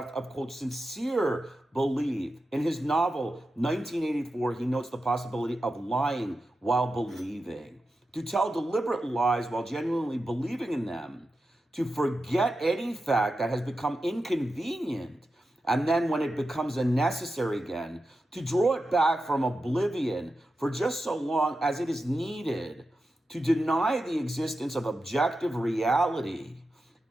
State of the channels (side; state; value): both; normal; correlation 0.90